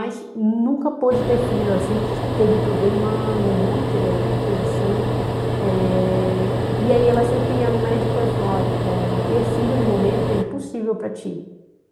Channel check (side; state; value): both; identical; correlation 1.00